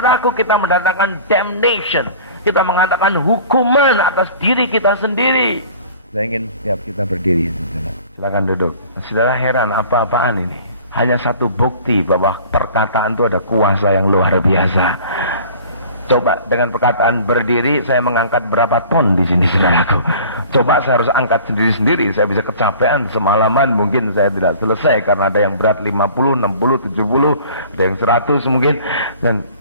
kita mendatangkan damnation. Kita mengatakan hukuman atas diri kita sendiri. Saya ingin setiap kita berdiri, saudara. Silakan duduk. Saudara heran apa-apaan ini? Hanya satu bukti bahwa perkataan itu ada kuasa yang luar biasa. Coba dengan perkataan berdiri, saya mengangkat berapa ton di sini, saudaraku. Coba saya harus angkat sendiri-sendiri, saya bisa kecapean semalaman, mungkin saya tidak selesai karena ada yang berat 50, 60, 70, ada yang 100 mungkin. Dan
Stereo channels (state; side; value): inverted; both; correlation -0.46